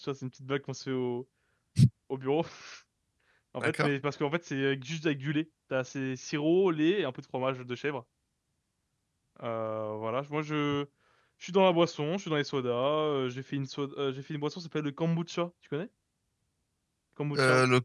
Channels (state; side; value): identical; both; correlation 1.00